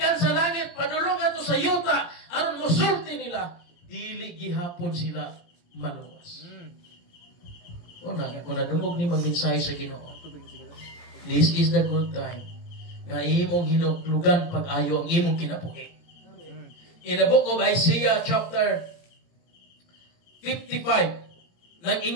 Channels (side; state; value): right; late; 18 ms